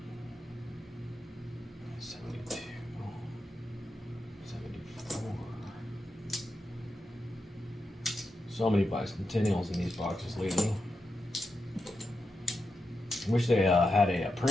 72, 74. So many bicentennials in these boxes lately. I wish they had a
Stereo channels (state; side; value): normal; both; correlation 0.88